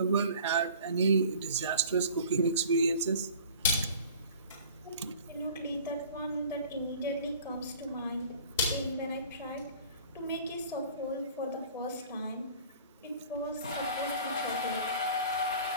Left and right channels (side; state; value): both; inverted; correlation -0.47